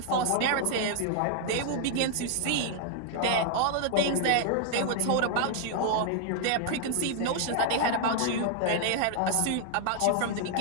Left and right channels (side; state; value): both; different; correlation 0.00